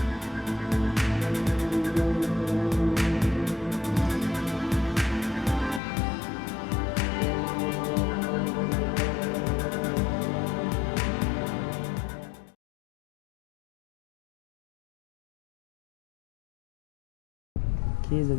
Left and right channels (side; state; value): right; drops out; at 5.8 s